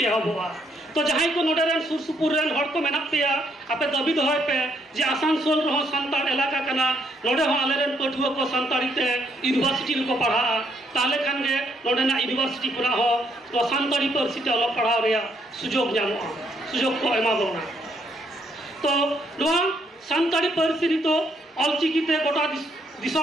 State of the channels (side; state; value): both; normal; correlation 0.73